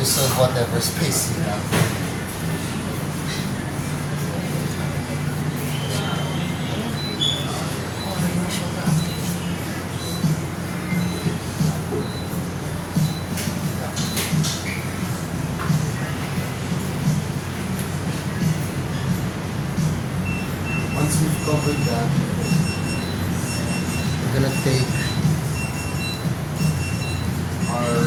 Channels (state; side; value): identical; both; correlation 1.00